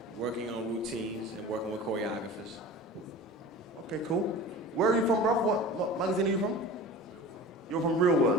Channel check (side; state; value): both; normal; correlation 0.37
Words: working on routines and working with choreographers. Okay, cool. Where are you from, bruv? What magazine are you from? You're from Real